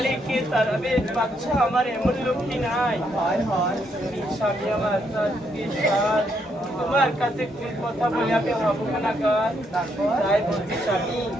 কে তারাবে বাচ্চা আমার এমন লোকটি নাই। স্বামী আমার সাথ তোমার কাছে কোন কথা বলে আমি ভাববো না কার, তাই বলছি স্বামী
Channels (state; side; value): normal; both; correlation 0.75